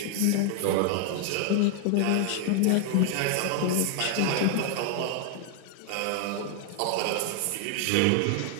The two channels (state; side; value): different; both; correlation 0.00